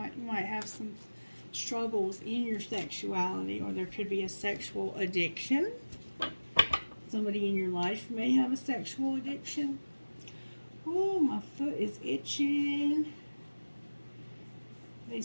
might have some struggles in your sexuality, or there could be a sexual addiction. Somebody in your life may have a sexual addiction. Oh, my foot is itching. They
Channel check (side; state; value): both; inverted; correlation -1.00